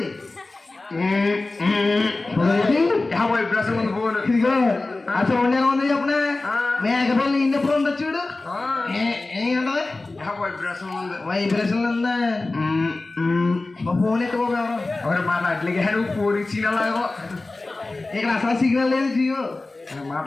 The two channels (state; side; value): quieter; right; 3.2 dB